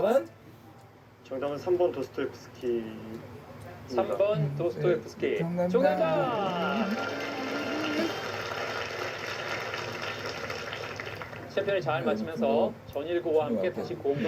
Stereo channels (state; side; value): identical; both; correlation 1.00